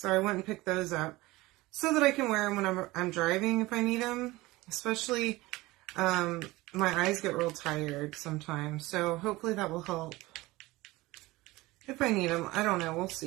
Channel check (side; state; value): left; quieter; 20.0 dB